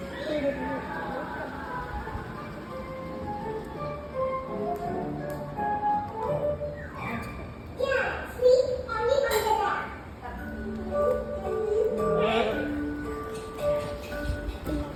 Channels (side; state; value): both; identical; correlation 1.00